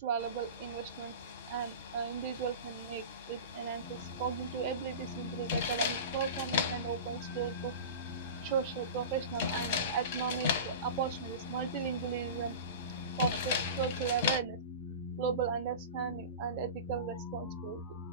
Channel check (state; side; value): inverted; both; correlation -0.30